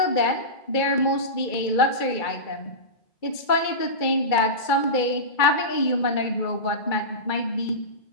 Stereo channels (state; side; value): late; right; 2.3 ms